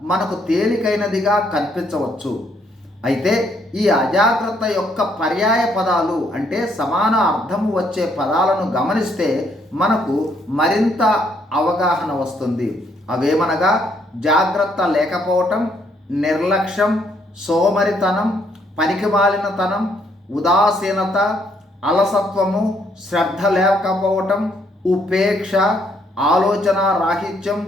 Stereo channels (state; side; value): normal; both; correlation 0.70